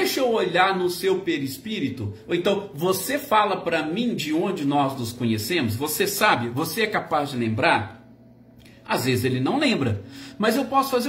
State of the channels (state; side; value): identical; both; correlation 1.00